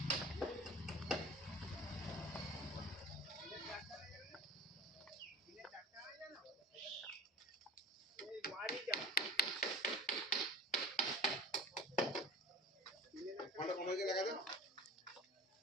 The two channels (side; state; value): both; normal; correlation 0.37